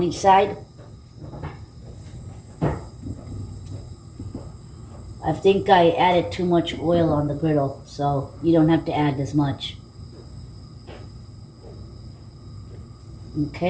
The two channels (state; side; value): identical; both; correlation 1.00